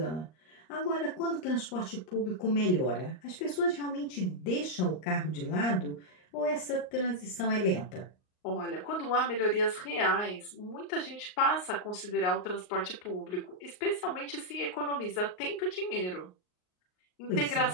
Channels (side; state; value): right; late; 38 ms